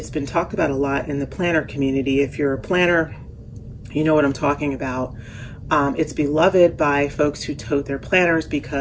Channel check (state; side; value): identical; both; correlation 1.00